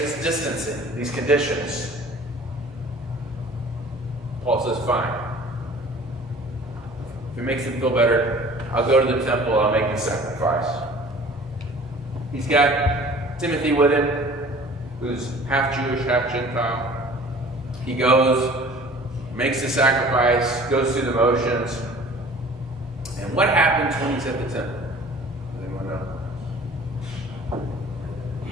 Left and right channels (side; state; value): both; normal; correlation 0.47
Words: distancing, these conditions. Paul says, fine. If it makes them feel better, I'll go to the temple, I'll make the sacrifice. He's got Timothy with him, who's half Jewish, half Gentile. He goes, makes the sacrifice, goes through the motions. And what happens when he's at the temple? Does anyone know?